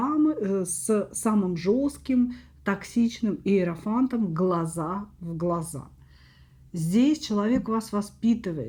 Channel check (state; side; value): identical; both; correlation 1.00